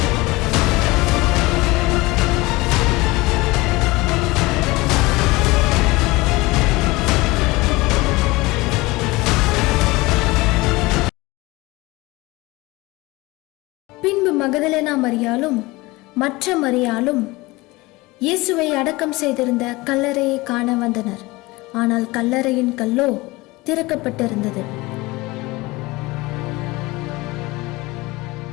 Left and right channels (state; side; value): quieter; right; 21.8 dB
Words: பின்பு மகதலேனா மரியாளும் மற்ற மரியாளும் இயேசுவை அடக்கம் செய்திருந்த கல்லறையை காண வந்தனர். ஆனால் கல்லறையின் கல்லோ திறக்கப்பட்டிருந்தது.